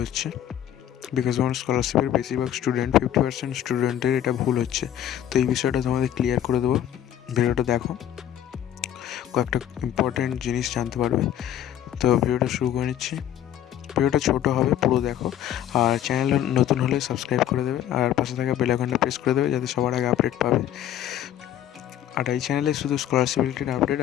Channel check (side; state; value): right; quieter; 11.1 dB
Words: হচ্ছে, বিকাশ ভবন স্কলারশিপের বেশিরভাগ 50% স্টুডেন্টের এটা ভুল হচ্ছে। তো এই বিষয়টা তোমাদের ক্লিয়ার করে দেবো। ভিডিওটা দেখো, কয়েকটা ইম্পর্টেন্ট জিনিস জানতে পারবে। তো ভিডিওটা শুরু করে নিচ্ছি। ভিডিওটা ছোটো হবে, পুরো দেখো। আর চ্যানেল নতুন হলে সাবস্ক্রাইব করে দেবে, আর পাশে থাকা বেল আইকনটা প্রেস করে দেবে যাতে সবার আগে আপডেট পাবে। আর এই চ্যানেলে শুধু স্কলারশিপ রিলেটেড আপডেট